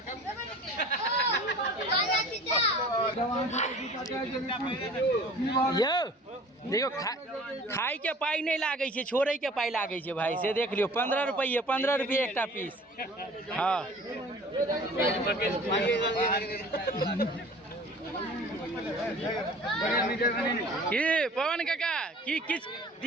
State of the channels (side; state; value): both; normal; correlation 0.46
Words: यो देखो खाई के पाई नहीं लागे छे छोड़े के पाई लागे छे भाई से देख लियो 15 रुपये एक पीस हाँ की पवन काका की किछ